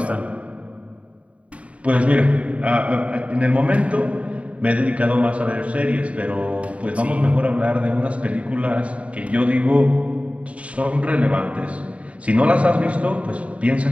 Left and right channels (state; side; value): late; left; 0.065 ms